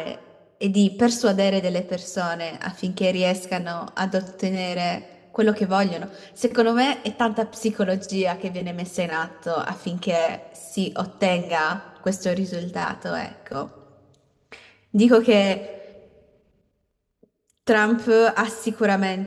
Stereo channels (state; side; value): identical; both; correlation 1.00